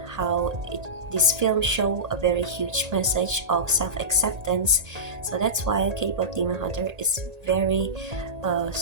how this film show a very huge message of self-acceptance. So that's why K-pop Demon Hunter is very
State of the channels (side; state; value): left; late; 1.8 ms